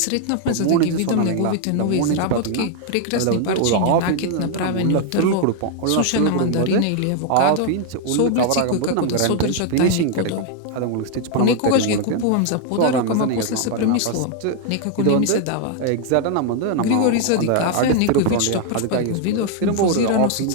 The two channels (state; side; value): different; both; correlation 0.00